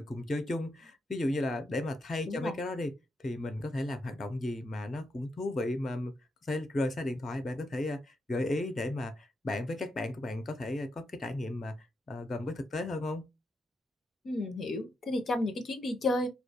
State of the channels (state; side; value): normal; both; correlation 0.83